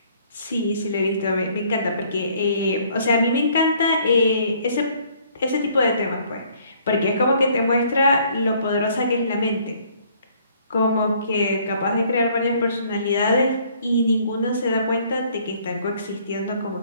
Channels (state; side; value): inverted; both; correlation -0.61